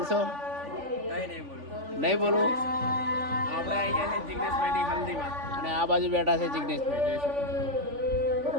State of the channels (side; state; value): left; late; 3.5 ms